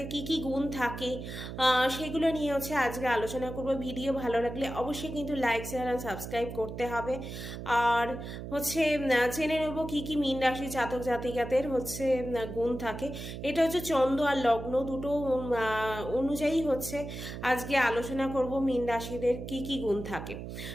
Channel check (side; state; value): right; noise; hum, 8 dB below the sound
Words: কি কি গুণ থাকে সেগুলো নিয়ে আজকে আলোচনা করব। ভিডিও ভালো লাগলে অবশ্যই কিন্তু লাইক শেয়ার আর সাবস্ক্রাইব করতে হবে। আর জেনে নেব কি কি মীন রাশির জাতক জাতিকাদের গুণ থাকে। এটা চন্দ্র আর লগ্ন দুটো অনুযায়ী আজকে আলোচনা করব মীন রাশিদের কি কি গুণ থাকে।